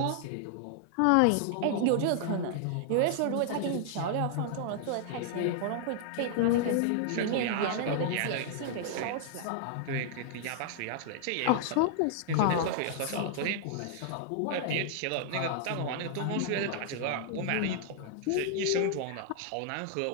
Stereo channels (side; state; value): both; different; correlation -0.01